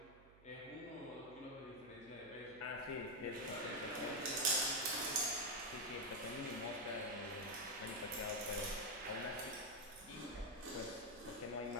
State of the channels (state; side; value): noise; right; hum, 23 dB below the sound